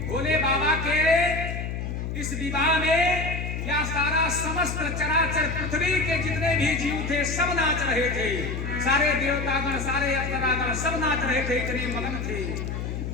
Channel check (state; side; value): noise; left; hum, 4 dB below the sound